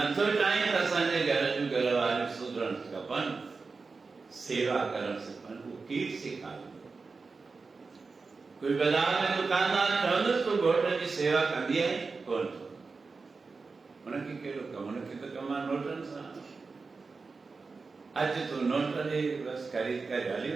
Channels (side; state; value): left; quieter; 4.3 dB